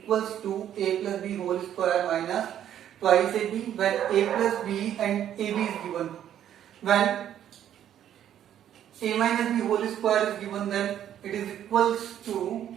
to a plus b whole square minus twice ab, when a plus b and ab is given. When a minus b whole square is given, then it is equals to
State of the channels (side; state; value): left; quieter; 10.6 dB